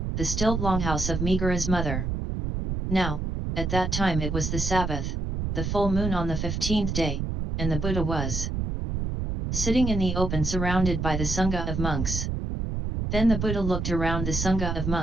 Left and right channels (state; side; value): noise; right; rumble, 2 dB below the sound